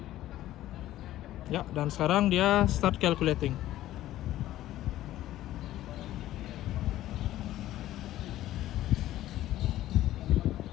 Ya, dan sekarang dia start calculating.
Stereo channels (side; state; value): right; quieter; 14.2 dB